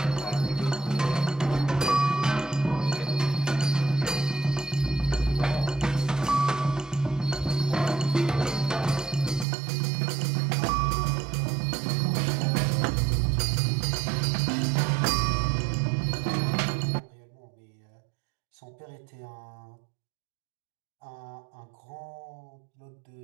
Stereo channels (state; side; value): drops out; left; at 9.5 s